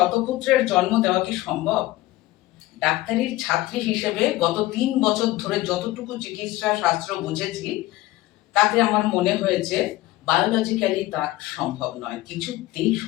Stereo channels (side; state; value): right; quieter; 17.4 dB